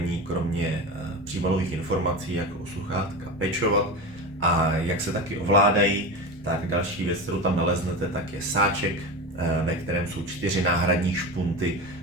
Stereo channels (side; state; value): both; normal; correlation 0.24